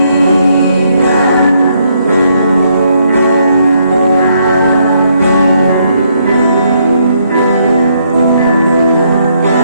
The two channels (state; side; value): inverted; both; correlation -0.73